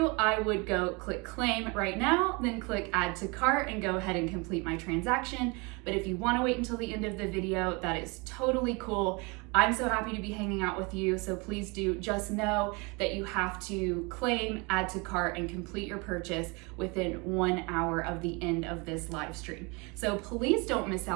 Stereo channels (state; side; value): quieter; left; 28.6 dB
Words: I would go click claim right now, then click add to cart and go ahead and complete my transaction. But if you want to wait until the end of the video, that is totally cool. I'm so happy to be hanging out with you, so please do just know that you have to claim, add to cart, and complete your purchase within 1 hour of the end of this live stream. So please don't miss